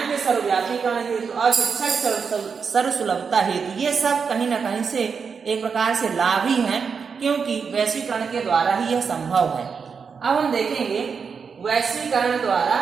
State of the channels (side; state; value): left; quieter; 5.8 dB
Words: के सर्वव्यापीकरण हेतु और शिक्षा की सर्वसुलभता हेतु। ये सब कहीं न कहीं से एक प्रकार से लाभ ही हैं, क्योंकि वैश्वीकरण के द्वारा ही यह संभव है। अब हम देखेंगे वैश्वीकरण द्वारा